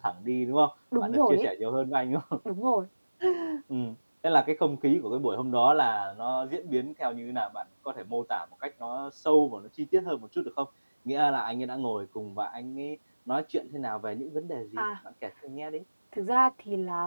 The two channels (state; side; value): inverted; both; correlation -1.00